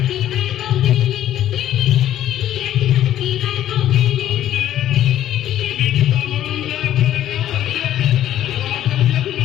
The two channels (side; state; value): right; quieter; 12.1 dB